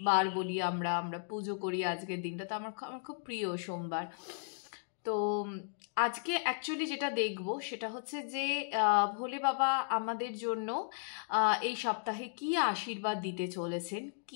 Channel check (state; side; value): silent; right; digital silence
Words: বার বলি, আমরা পুজো করি আজকের দিনটা, তো আমার খুব প্রিয় সোমবার। তো আজকে অ্যাকচুয়ালি যেটা দেখব সেটা হচ্ছে যে ভোলে বাবা আমাদের জন্য এই সপ্তাহে কি আশীর্বাদ দিতে চলেছেন,